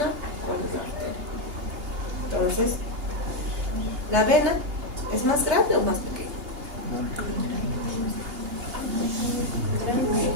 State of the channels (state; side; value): late; left; 2.8 ms